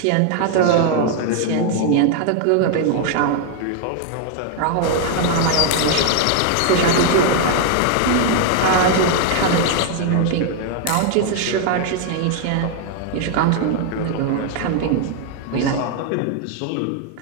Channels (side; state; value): both; different; correlation 0.00